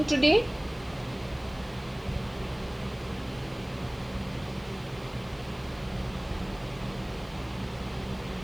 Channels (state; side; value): noise; right; hiss, 26 dB below the sound